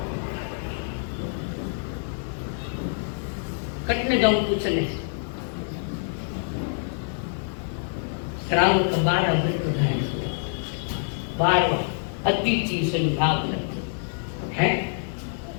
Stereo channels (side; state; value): right; silent; digital silence